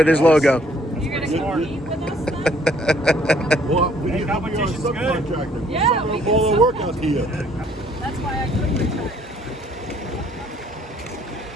his logo. You're gonna compete with us then? Well, we Hey, need to be our competition's good. subcontractor. Yeah, we can all the sub- work out here. That's why I couldn't retire.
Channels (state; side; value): normal; both; correlation 0.62